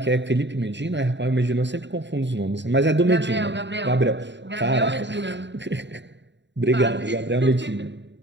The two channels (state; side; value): late; left; 0.52 ms